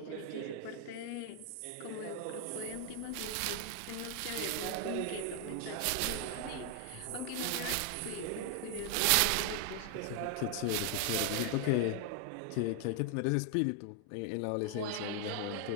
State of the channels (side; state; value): both; different; correlation 0.00